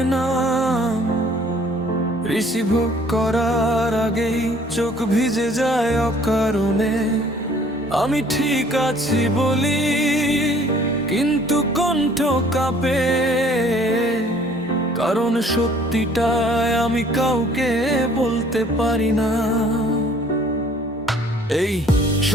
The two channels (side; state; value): both; normal; correlation 0.56